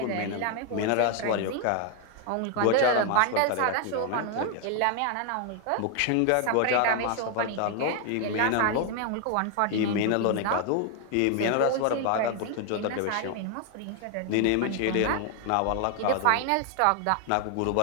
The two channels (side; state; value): both; different; correlation 0.00